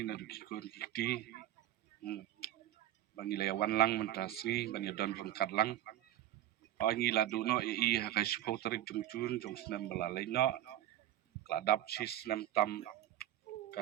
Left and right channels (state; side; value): quieter; left; 13.0 dB